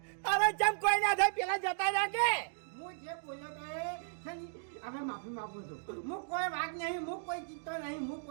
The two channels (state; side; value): silent; left; digital silence